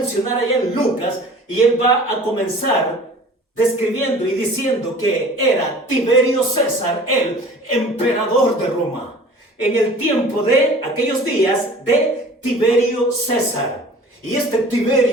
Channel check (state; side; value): normal; both; correlation 0.45